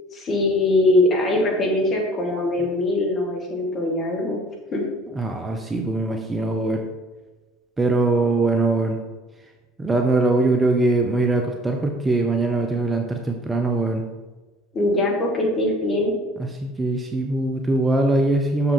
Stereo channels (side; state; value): both; normal; correlation 0.55